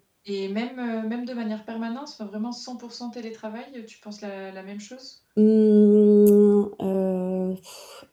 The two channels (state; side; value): identical; both; correlation 1.00